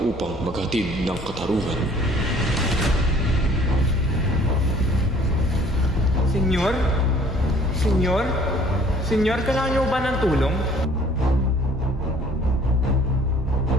upang maghatid ng katarungan. Senyor? Senyor? Senyor, kailangan niyo ba ng tulong?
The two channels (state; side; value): normal; both; correlation 0.55